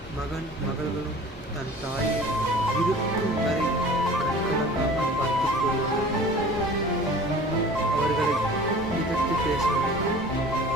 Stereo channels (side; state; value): both; normal; correlation 0.43